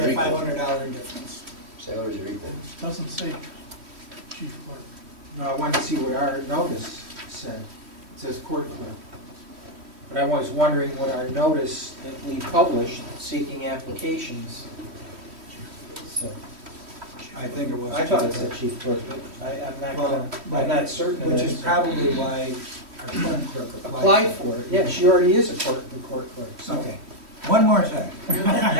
Salaries are equal. $500 difference? Salaries are equal. It doesn't say chief clerk. No, I wanted to see what our notice said. It says court clerk. But I was wondering what our notice that we published seeking applications said. I think it was. I thought it said chief clerk, but I'm not certain of that. Which is probably why our current clerk Applied applied. for it, yeah, she already is the court clerk, so. Okay, one more thing.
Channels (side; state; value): left; late; 3.1 ms